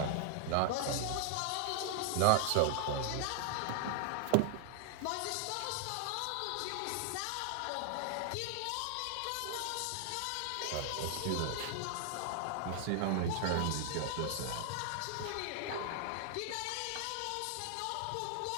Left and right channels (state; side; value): different; both; correlation 0.00